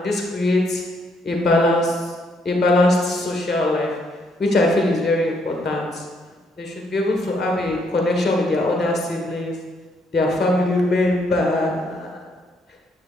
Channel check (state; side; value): normal; both; correlation 0.72